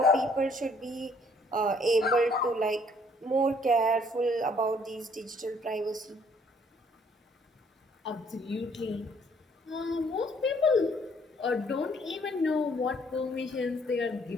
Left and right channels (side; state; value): both; normal; correlation 0.63